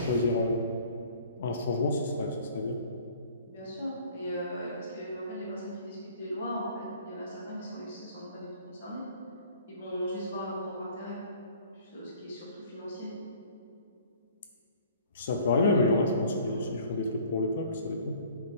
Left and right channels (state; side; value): inverted; both; correlation -0.52